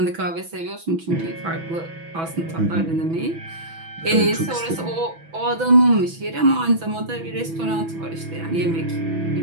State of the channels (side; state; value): left; late; 6.1 ms